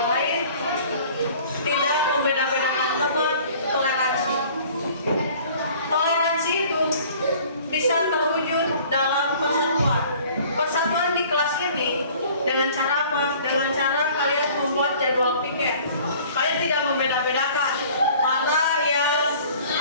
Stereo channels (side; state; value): both; inverted; correlation -0.50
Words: lain, tidak membeda-bedakan teman, toleransi. Toleransi itu bisa terwujud dalam persatuan. Persatuan di kelas ini dengan cara apa? Dengan cara kalian membuat jadwal piket. Kalian tidak membeda-bedakan mana yang